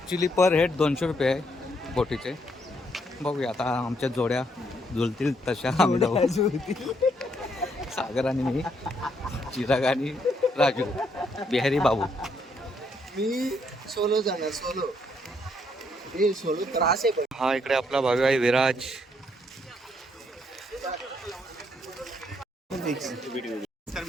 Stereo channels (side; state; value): both; normal; correlation 0.72